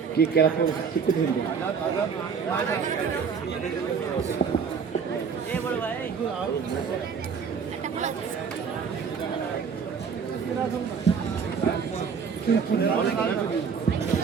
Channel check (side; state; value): left; quieter; 6.2 dB